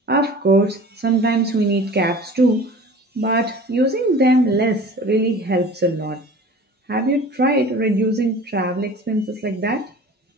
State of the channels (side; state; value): both; normal; correlation 0.41